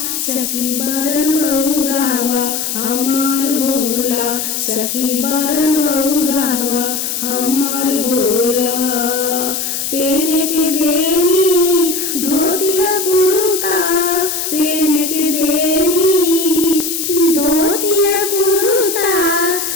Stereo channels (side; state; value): left; noise; hiss, 3 dB below the sound